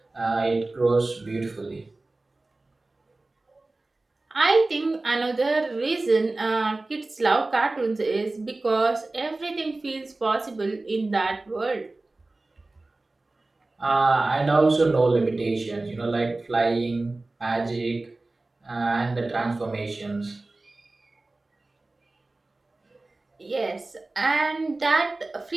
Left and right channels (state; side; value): quieter; left; 3.1 dB